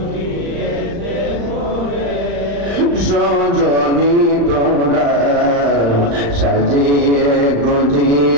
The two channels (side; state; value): left; late; 35 ms